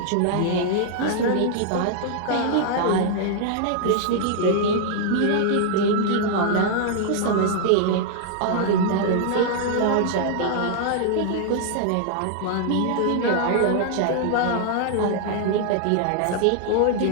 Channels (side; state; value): both; different; correlation -0.01